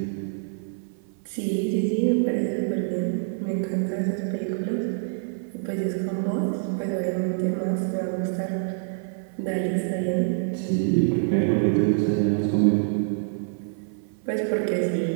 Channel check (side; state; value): left; silent; 56 dB below the other